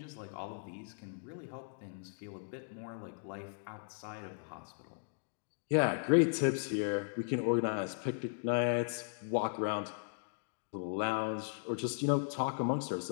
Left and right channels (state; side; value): silent; right; digital silence